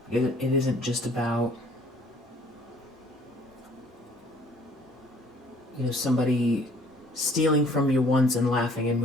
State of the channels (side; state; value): both; normal; correlation 0.58